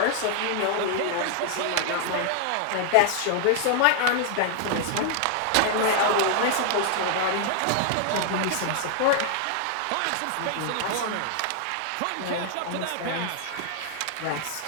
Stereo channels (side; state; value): both; different; correlation 0.00